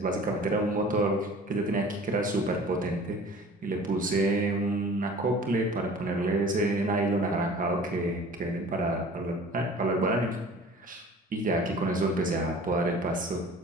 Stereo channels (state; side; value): normal; both; correlation 0.45